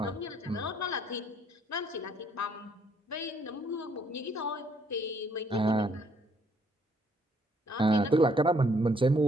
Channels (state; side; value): normal; both; correlation 0.67